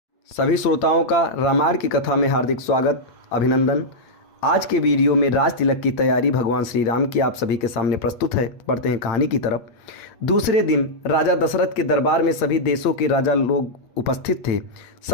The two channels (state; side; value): late; right; 8.8 ms